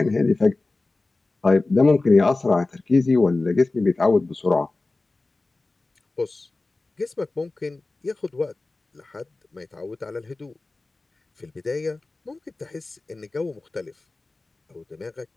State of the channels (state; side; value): quieter; right; 3.3 dB